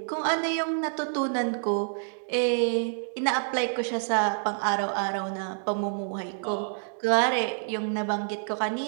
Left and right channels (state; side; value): silent; left; digital silence